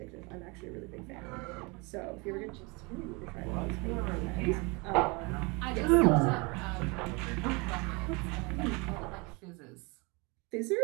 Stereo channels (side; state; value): left; quieter; 28.3 dB